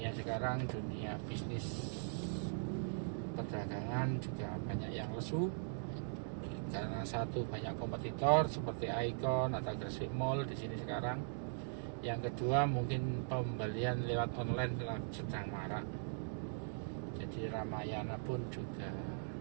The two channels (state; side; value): silent; left; digital silence